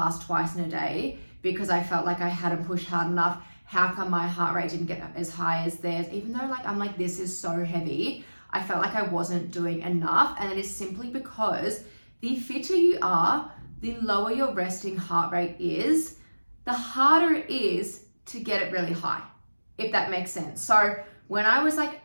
twice in a day because I felt like I hadn't pushed hard enough. How come my heart rate didn't get as high as theirs? Even though I'm this is so heavy, I felt like I wasn't doing enough. And it is simply because the fitter you are, the lower your resting heart rate is, the harder it is to get it really high, if that makes sense. So when I was like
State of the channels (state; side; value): inverted; both; correlation -1.00